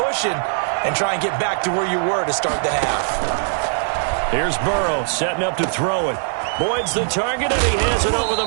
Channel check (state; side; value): silent; left; 66 dB below the other